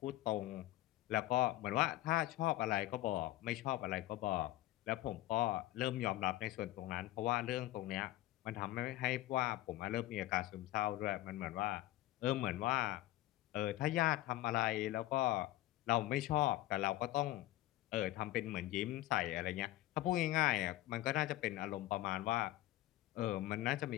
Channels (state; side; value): quieter; right; 16.2 dB